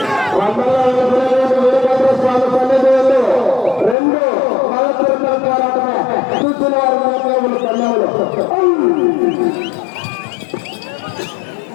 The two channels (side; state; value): right; drops out; at 4.0 s